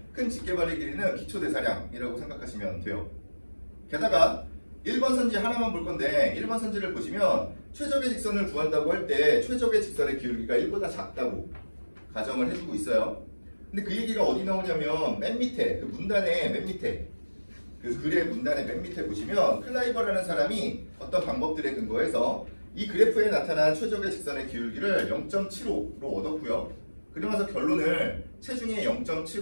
큰 직계발의 길이는 기초대사량이라고 생각하시면 돼요. 게다가 1번 선지 하나만 볼 건데 1번 선지를 보시면 최적의 직선을 구한다고 할 때 최적의 직선의 기울기가 1보다 작다고 가정을 해주고 있어요. 근데 그 얘기가 어디 나오냐면 맨 밑에 그 문단의 맨 밑에 그 글의 문단의 맨 밑에 보시면 클라이버라는 사람이 어떤 방법들에 근거해서 이 그래프에 나타난 최적의 직선의 기울기를 0.75로 얻었고요. 그러면서 결론을 체중의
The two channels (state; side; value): inverted; both; correlation -1.00